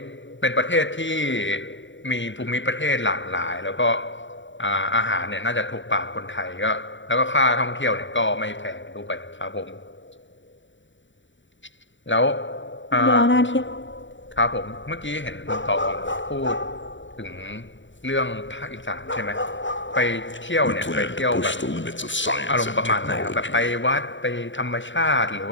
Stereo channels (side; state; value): right; late; 0.55 ms